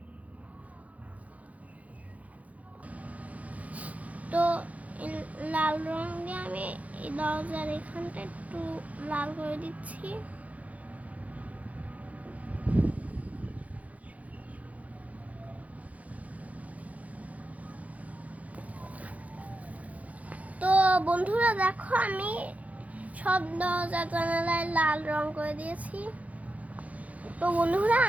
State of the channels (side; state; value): left; late; 0.069 ms